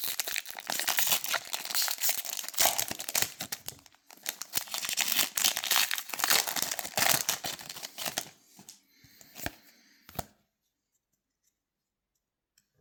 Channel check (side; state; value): both; identical; correlation 1.00